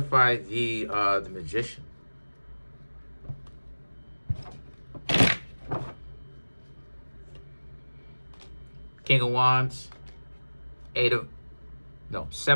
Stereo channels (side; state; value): both; inverted; correlation -1.00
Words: the Magician. King of Wands,